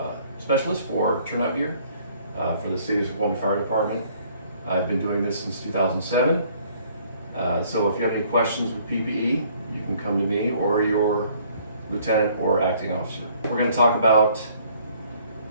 specialist for turnout gear for the City of Snoqualmie Fire Department. I've been doing this since 2007. So if you have any questions with PPE, you can come to me or your lieutenant or acting officer. We're going to talk about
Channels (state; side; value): inverted; both; correlation -0.60